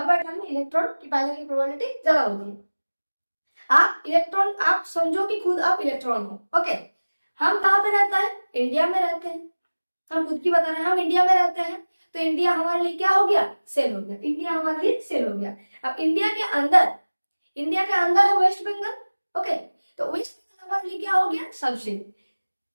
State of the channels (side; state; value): both; inverted; correlation -1.00